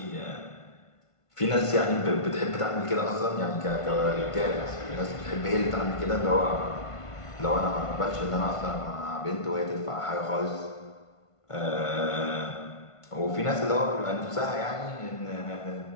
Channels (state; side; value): late; right; 1.5 ms